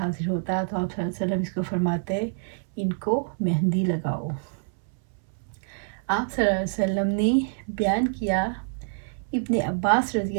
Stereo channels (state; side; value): silent; left; 61 dB below the other